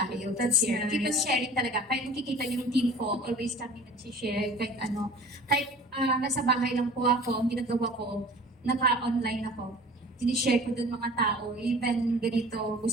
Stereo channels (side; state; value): both; normal; correlation 0.45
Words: That's Share. nice. Keep on sharing talaga. Kahit nakikita yung team ko, always kami nag-share. Kahit ano, kahit nasa bahay lang po ako, ang ginagawa ko, naka-online ako. Sinishare ko dun mga tao. Even ganito,